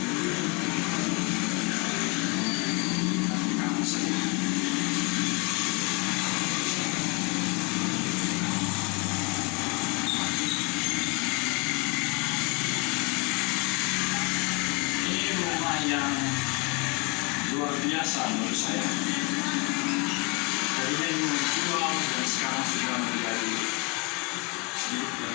Yang luar biasa menurut saya. Tadinya ini menjual dan sekarang sudah menjadi sedikit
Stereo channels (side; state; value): right; quieter; 30.0 dB